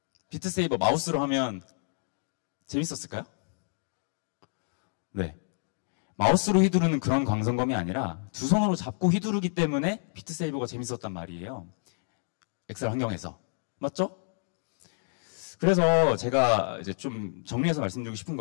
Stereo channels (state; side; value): silent; right; digital silence